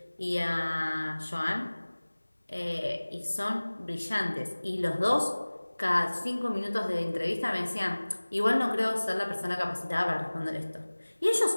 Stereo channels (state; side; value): inverted; both; correlation -1.00